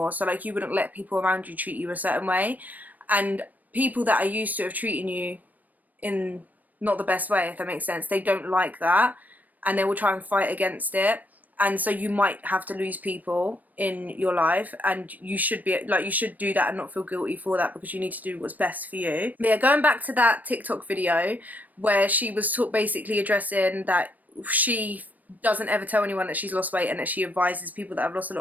So like, you wouldn't let people around you treat you a certain way, and people that are used to have treating you in not the best way, if that makes sense, they don't like that, and they will try and fight against it. And so you might have to lose people in your life, and you should be like, you should do that and not feel guilty for that, because you need to do what's best for you. But yeah, going back to that TikTok video where she was basically addressing that she doesn't ever tell anyone that she's lost weight, and that she advises people that have lost a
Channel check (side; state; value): left; late; 0.081 ms